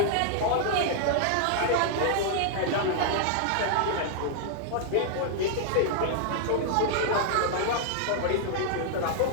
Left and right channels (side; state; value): both; different; correlation -0.01